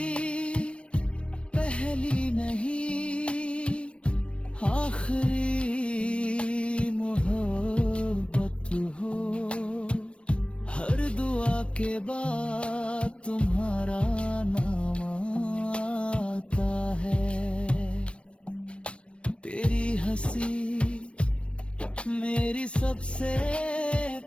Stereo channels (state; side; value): late; right; 0.060 ms